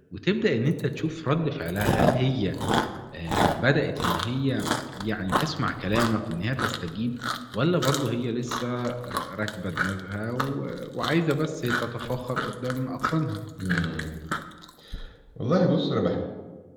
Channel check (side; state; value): both; identical; correlation 1.00